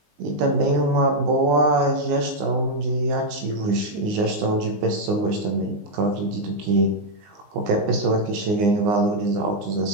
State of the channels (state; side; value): late; left; 20 ms